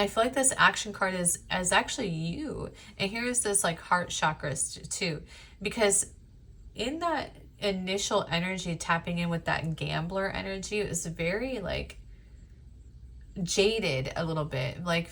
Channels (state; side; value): identical; both; correlation 1.00